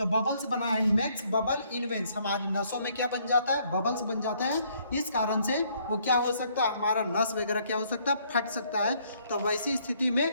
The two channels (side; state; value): both; inverted; correlation -0.67